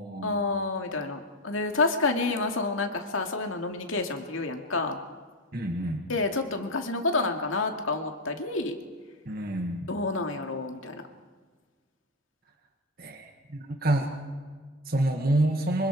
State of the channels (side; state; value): both; normal; correlation 0.15